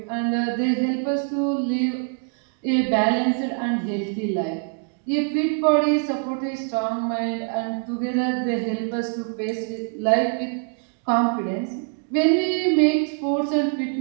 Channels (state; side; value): quieter; left; 38.8 dB